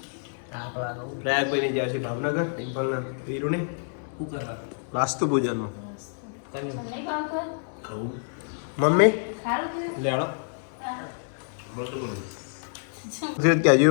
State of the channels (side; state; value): right; silent; digital silence